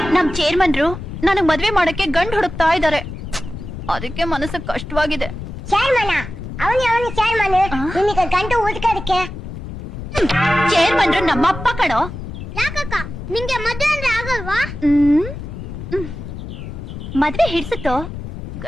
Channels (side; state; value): left; noise; rumble, 9 dB below the sound